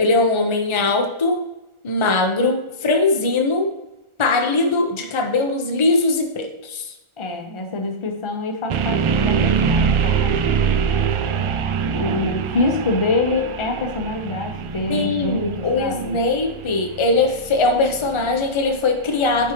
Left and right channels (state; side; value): late; left; 1.4 ms